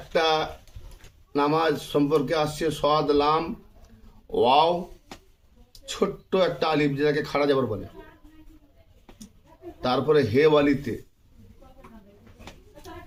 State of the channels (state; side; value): identical; both; correlation 1.00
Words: নামাজ সম্পর্কে আসছে সদ লাম ওয়াও, ছোট্ট একটা আলিফ যেটাকে খাড়া যাবার বলে, তারপরে হে ওয়ালিতে।